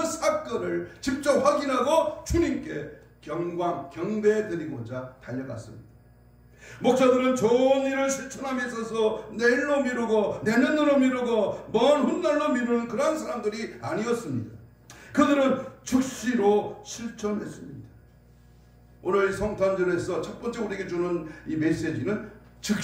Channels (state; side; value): identical; both; correlation 1.00